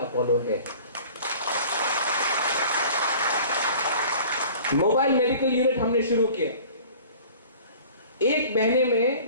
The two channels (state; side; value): inverted; both; correlation -0.45